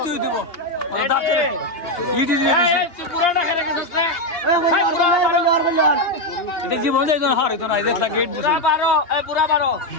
তুই দিব দাদা চলে ই দি দিছি তুই পুরাটা করে গেছিস না এটা কি বল যাই তো হার তো না দেখলা গেট দিছি পুরা 12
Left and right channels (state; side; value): late; right; 2.8 ms